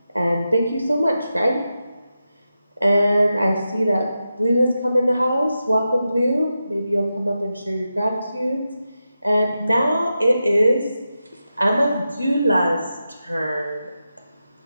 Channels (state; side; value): inverted; both; correlation -0.90